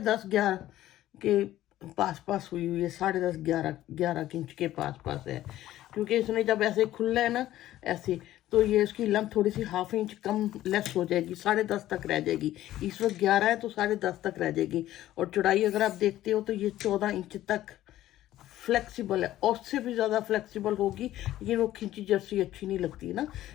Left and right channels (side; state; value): right; quieter; 14.1 dB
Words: 11 के पास हुई हुई है। 10.5 11 इंच के पास है, क्योंकि इसने जब ऐसे खुला है ना ऐसे, तो ये इसकी लेंथ थोड़ी सी ½ इंच कम लेस हो जाएगी, 10.5 तक रह जाएगी। इस वक्त 11 है तो 10.5 तक रह जाएगी। और चौड़ाई अगर आप देखते हो तो ये 14 इंच तक फ्लेक्सिबल है, और उससे भी ज़्यादा फ्लेक्सिबल होगी, लेकिन वो खिंची जर्सी अच्छी नहीं लगती ना।